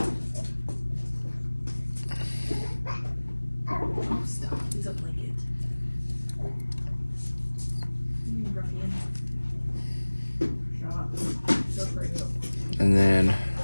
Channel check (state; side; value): inverted; both; correlation -1.00